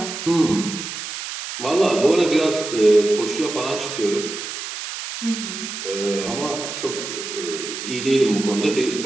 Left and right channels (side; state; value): right; noise; hiss, 7 dB below the sound